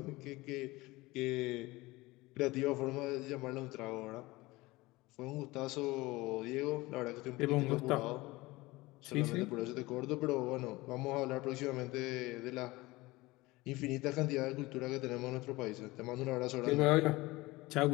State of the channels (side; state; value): right; quieter; 20.8 dB